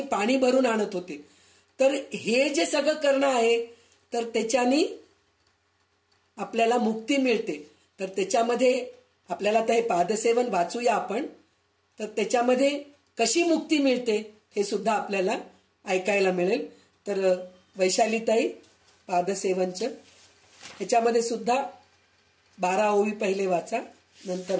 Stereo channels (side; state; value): both; identical; correlation 1.00